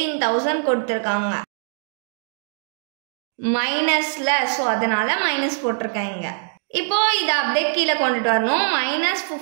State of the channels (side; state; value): left; silent; digital silence